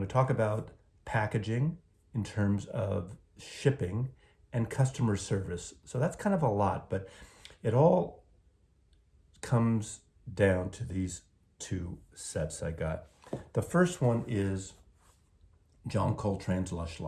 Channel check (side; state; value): both; identical; correlation 1.00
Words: talk about packaging in terms of shipping and customer service. So that's kind of a lot, but it all comes down to these two sets I got. The first one is John Coltrane's Lush